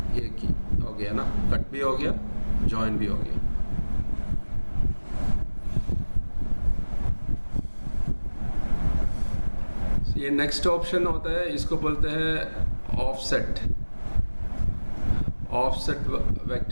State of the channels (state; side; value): inverted; both; correlation -1.00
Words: एक ही हो गया ना, कट भी हो गया ज्वाइन भी हो गया। ये नेक्स्ट ऑप्शन होता है, इसको बोलते हैं ऑफसेट। ऑफसेट